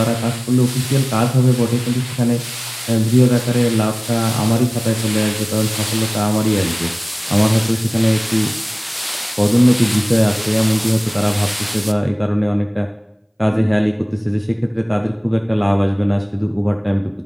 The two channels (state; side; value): identical; both; correlation 1.00